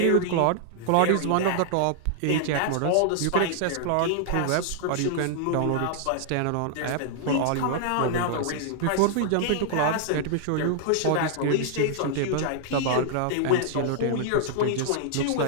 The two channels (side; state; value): both; different; correlation -0.01